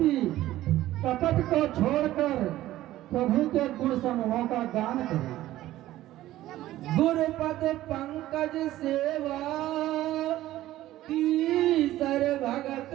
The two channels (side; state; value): left; quieter; 14.9 dB